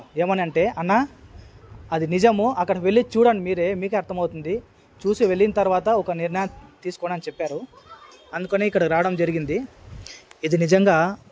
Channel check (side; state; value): both; identical; correlation 1.00